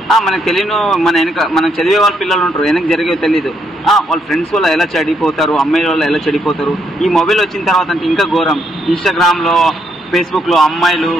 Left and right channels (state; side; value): normal; both; correlation 0.75